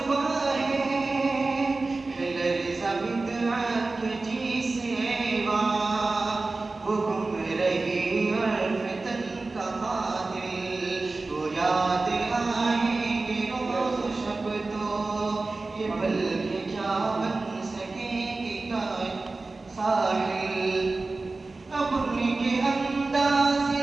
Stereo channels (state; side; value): quieter; left; 3.5 dB